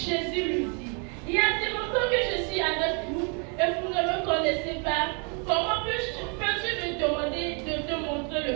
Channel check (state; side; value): quieter; left; 36.9 dB